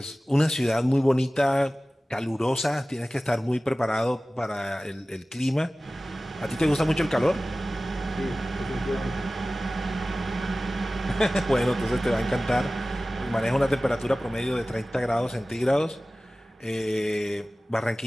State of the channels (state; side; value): normal; both; correlation 0.97